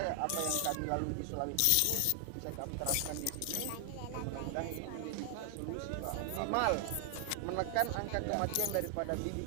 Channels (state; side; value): different; both; correlation 0.00